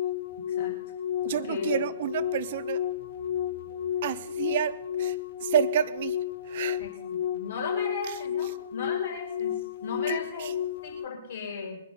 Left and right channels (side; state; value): both; inverted; correlation -0.47